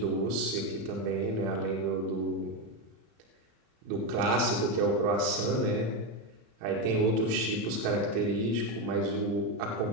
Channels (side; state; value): left; late; 33 ms